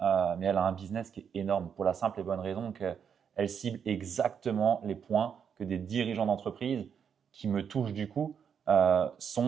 elle a un business qui est énorme pour la simple et bonne raison qu'elle cible exactement les points que des dirigeants d'entreprise qui me touchent du coup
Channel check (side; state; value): left; quieter; 7.4 dB